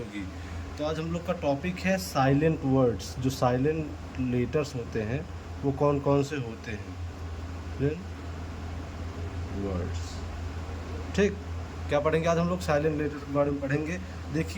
तो आज हम लोग का टॉपिक है साइलेंट वर्ड्स। जो साइलेंट लेटर्स होते हैं वो कौन कौन से होते हैं, वर्ड्स। ठीक, क्या पढ़ेंगे आज हम लोग? साइलेंट लेटर्स के बारे में पढ़ेंगे।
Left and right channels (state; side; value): identical; both; correlation 1.00